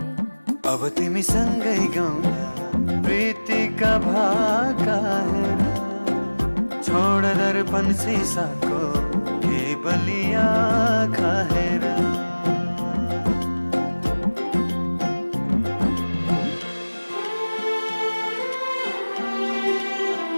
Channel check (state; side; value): inverted; both; correlation -1.00